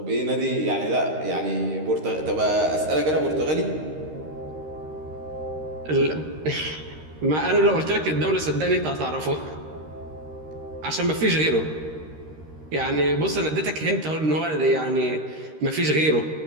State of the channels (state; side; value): late; left; 13 ms